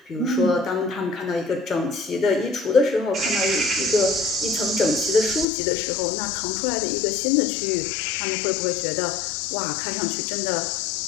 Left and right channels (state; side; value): drops out; right; at 5.5 s